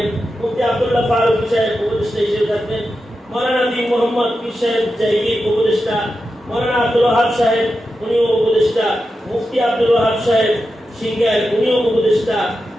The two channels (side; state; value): both; normal; correlation 0.90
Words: মুফতি আব্দুল্লাহ ফারুকী সাহেব উপদেষ্টা হিসেবে থাকবেন, মাওলানা বি মোহাম্মদ পীর সাহেব জাইগির উপদেষ্টা, মাওলানা আব্দুল ওয়াহাব সাহেব উনিও উপদেষ্টা, মুফতি আব্দুল ওয়াহাব সাহেব সিঙ্গার উনিও উপদেষ্টা,